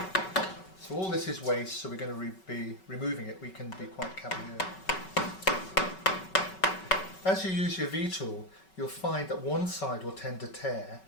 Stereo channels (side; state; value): right; late; 5.3 ms